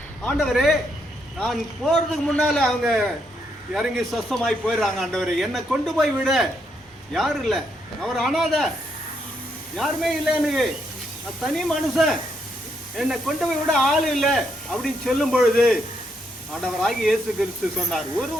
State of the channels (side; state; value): both; normal; correlation 0.77